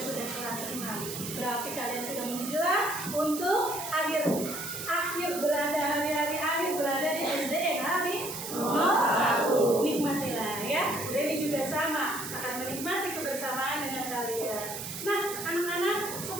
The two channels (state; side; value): noise; right; hiss, 7 dB below the sound